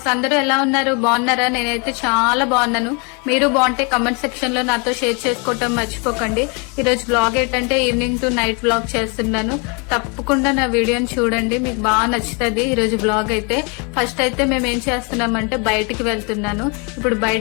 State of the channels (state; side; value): quieter; right; 33.2 dB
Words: అందరూ ఎలా ఉన్నారు? బాగున్నారా? నేనైతే చాలా బాగున్నాను. మీరు బాగుంటే కమెంట్ సెక్షన్ లో నాతో షేర్ చేసుకోవటం మర్చిపోకండి. ఈ రోజు బ్లాగ్ ఏంటంటే ఈవినింగ్ టు నైట్ బ్లాగ్ చేస్తున్నాను. తప్పకుండా నా వీడియోని చూడండి, మీకు బాగా నచ్చుతుంది. ఈ రోజు బ్లాగ్ అయితే ఫస్ట్ అయితే మేము ఏం చేస్తున్నామంటే బయటికి వెళ్తున్నాను. ఇప్పుడు